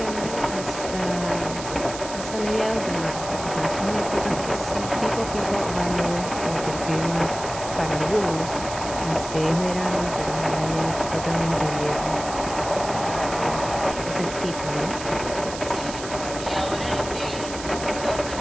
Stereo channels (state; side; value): noise; right; hiss, 10 dB below the sound